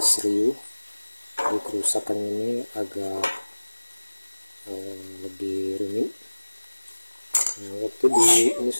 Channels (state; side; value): inverted; both; correlation -1.00